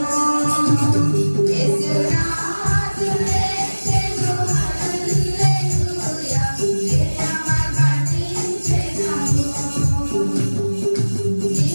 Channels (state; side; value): inverted; both; correlation -1.00